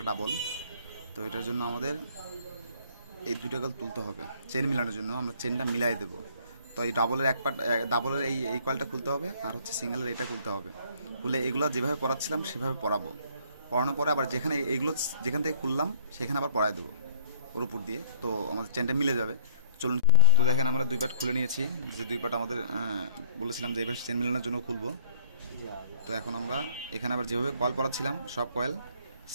ডাবল। তো এটার জন্য আমাদের এই দুইটা কল তুলতে হবে। চেন মিলানোর জন্য আমরা চেনটা মিলাই দেবো। তো এই ডাবলের এই কয়েলটা খুলতে হবে, আর হচ্ছে সিঙ্গেলের এইটা খুলতে হবে। খুলে এগুলো যেভাবে পড়াচ্ছিলাম সেভাবে পড়াবো। পড়ানোর পরে আবার যেখান থেকে খুললাম সেখানে আবার পড়ায় দেবো ওর উপর দিয়ে। তো আমাদের চেনটা মিলে যাবে। চলুন। তো দেখেন আমরা দুই পার্ট খুলে নিয়েছি, যে দুই পার্ট আমাদের বলেছিলাম যে এবার চেন মিলানোর জন্য খুলবো। তো এখন আমরা এখানে আবার যেভাবে কয়েল পড়াচ্ছিলাম সব কয়েল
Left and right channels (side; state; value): both; inverted; correlation -0.53